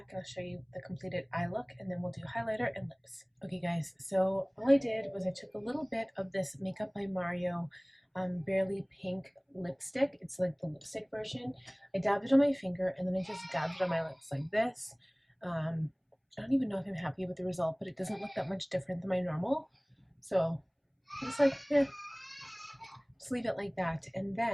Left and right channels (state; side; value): identical; both; correlation 1.00